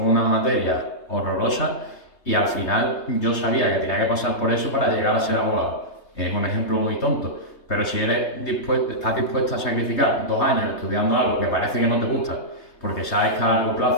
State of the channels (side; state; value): right; late; 3.2 ms